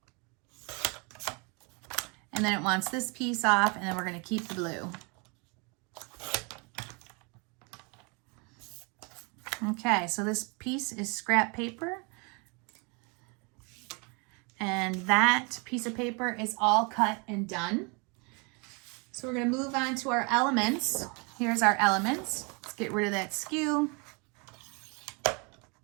And then it wants this piece off, and then we're going to keep the blue. Okay, so this piece is scrap paper. And that piece of paper is all cut and done. So we're going to move on to our elements. Here's our elements. Let's get rid of that skew.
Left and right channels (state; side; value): quieter; left; 31.7 dB